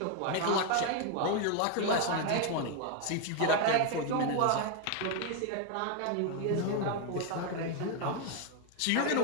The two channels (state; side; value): different; both; correlation 0.01